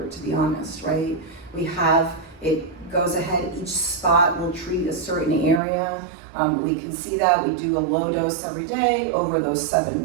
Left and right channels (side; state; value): left; drops out; at 5.6 s